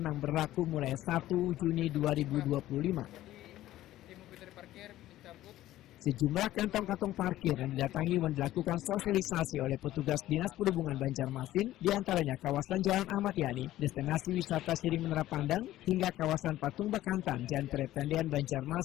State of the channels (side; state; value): right; quieter; 14.6 dB